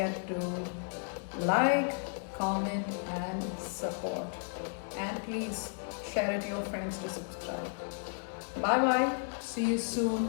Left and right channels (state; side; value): silent; right; 55 dB below the other